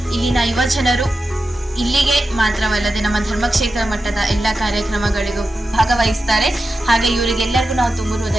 ಇಲ್ಲಿನ ಯುವಜನರು ಇಲ್ಲಿಗೆ ಮಾತ್ರವಲ್ಲದೆ ನಮ್ಮ ಧರ್ಮಕ್ಷೇತ್ರ ಮಟ್ಟದ ಎಲ್ಲ ಕಾರ್ಯಕ್ರಮಗಳಿಗೂ ಭಾಗವಹಿಸ್ತಾರೆ. ಹಾಗೆ ಇವರಿಗೆಲ್ಲರಿಗೂ ನಾವು ತುಂಬ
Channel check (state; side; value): normal; both; correlation 0.91